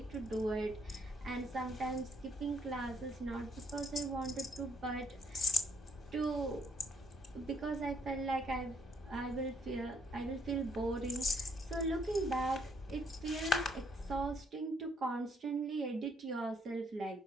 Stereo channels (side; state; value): both; normal; correlation 0.68